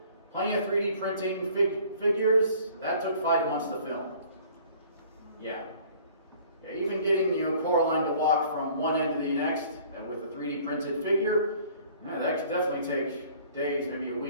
plenty of 3D printing figures, that took 5 months to film. Yeah, even getting Coraline to walk from one end to the next with a 3D printed figure, that could definitely take days, maybe a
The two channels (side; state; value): both; inverted; correlation -0.53